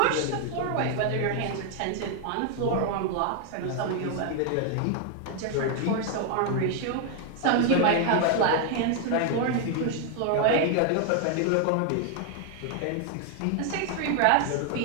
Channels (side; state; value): both; different; correlation 0.00